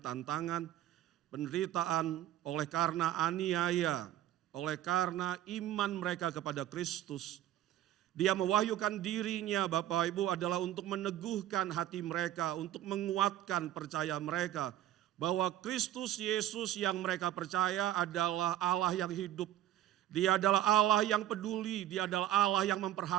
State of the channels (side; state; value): left; quieter; 12.8 dB